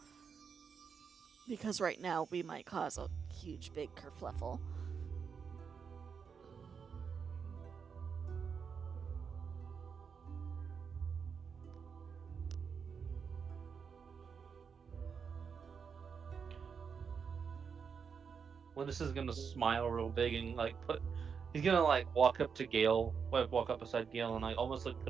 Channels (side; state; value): left; quieter; 6.2 dB